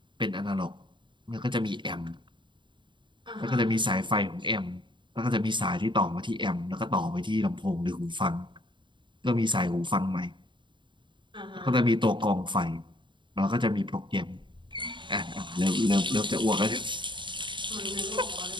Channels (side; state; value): left; late; 0.23 ms